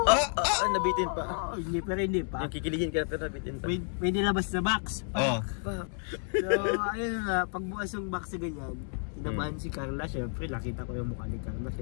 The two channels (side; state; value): right; silent; 57 dB below the other